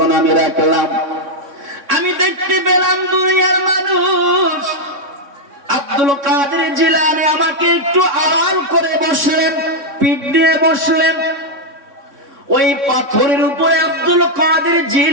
আমি রাখলাম, আমি দেখতে পেলাম দুনিয়ার মানুষ। আব্দুল কাদের জিলানী আমাকে একটু আড়াল করে বসলেন, পিঠ দিয়ে বসলেন। ওই পাথরের উপরে আব্দুল কাদের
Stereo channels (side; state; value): left; late; 3.6 ms